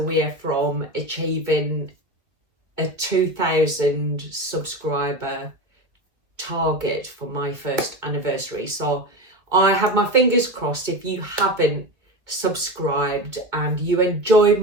from achieving a 2,000 subscriber target for my first anniversary. So I have my fingers crossed. If you haven't subscribed and you enjoy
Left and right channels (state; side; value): late; left; 2.0 ms